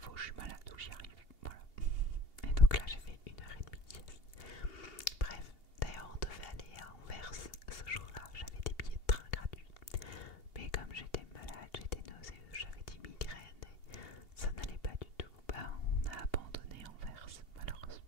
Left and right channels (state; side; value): late; right; 2.8 ms